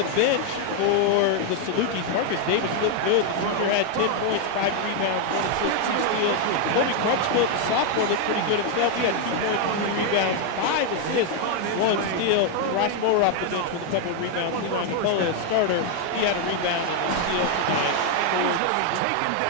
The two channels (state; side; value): different; both; correlation 0.01